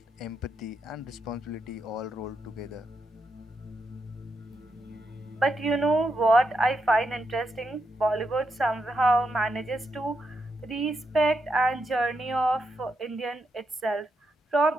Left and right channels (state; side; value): normal; both; correlation 0.83